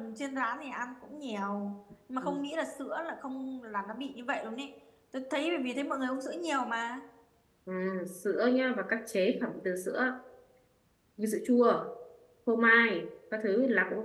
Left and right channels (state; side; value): identical; both; correlation 1.00